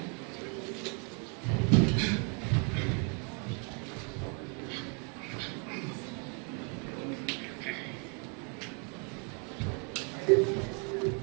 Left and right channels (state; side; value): quieter; left; 36.3 dB